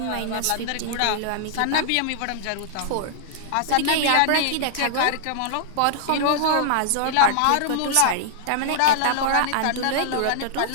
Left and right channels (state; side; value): different; both; correlation -0.01